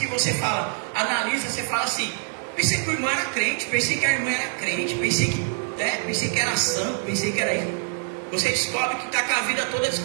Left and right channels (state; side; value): silent; left; 56 dB below the other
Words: você fala, analisa, você fala assim, pensei que o irmão era crente, pensei que a irmã era crente, pensei que era santo, pensei que era isso. Você descobre que está com a vida toda